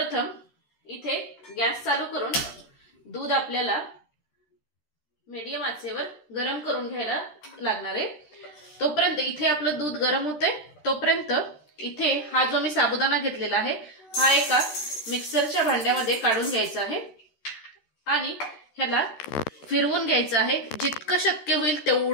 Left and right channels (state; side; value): late; right; 13 ms